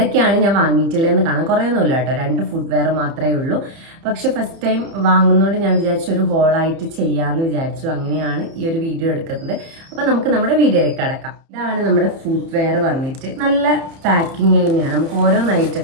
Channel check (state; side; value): late; left; 30 ms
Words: ഞാൻ വാങ്ങിയിട്ടില്ലെന്ന് കാണാൻ കുറേയൊന്നുമില്ല കേട്ടോ. 2 ഫുഡ് വെയർ മാത്രമേ ഉള്ളൂ. പക്ഷെ ഫസ്റ്റ് ടൈം വാങ്ങുന്നതുകൊണ്ട് ഞാൻ വിചാരിച്ചു ഒരു ഹോളായിട്ട് ചെയ്യാമെന്ന് വിചാരിച്ചു. അങ്ങനെയാണ് ഈ ഒരു വീഡിയോ എടുക്കുന്നത്. അപ്പൊ നമുക്ക് നമ്മുടെ വീഡിയോയിലേക്ക് കടക്കാം. ഇതാണ് നമ്മുടെ ഫുഡ് വെയർ വന്നിട്ട്. നല്ല പാക്കിങ് തന്നെയാണ്, നമുക്ക് ഓരോന്നായിട്ട്